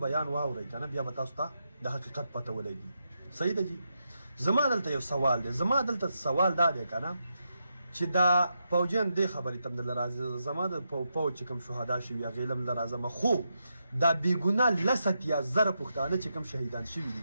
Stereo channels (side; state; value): both; inverted; correlation -0.84